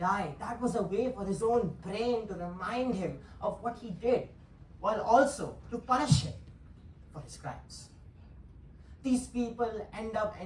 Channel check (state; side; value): identical; both; correlation 1.00